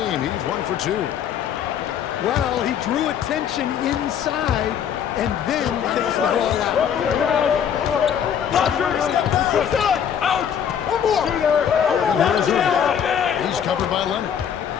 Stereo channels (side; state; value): right; quieter; 8.5 dB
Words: He's 1 for 2. Well, he drew attention inside and then takes the ball out. He's covered by Leonard.